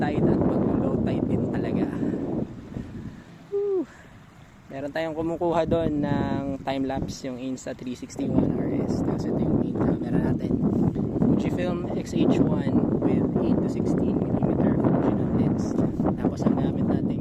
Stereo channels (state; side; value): identical; both; correlation 1.00